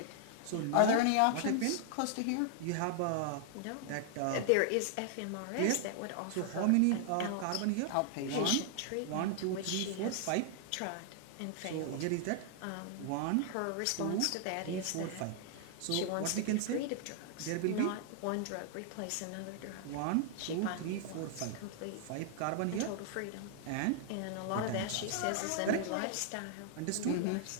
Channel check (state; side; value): different; both; correlation 0.00